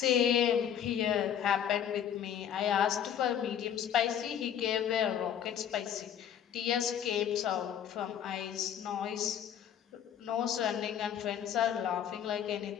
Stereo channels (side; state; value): right; quieter; 9.3 dB